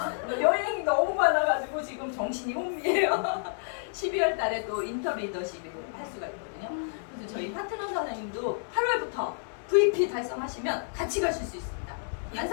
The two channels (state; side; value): silent; right; digital silence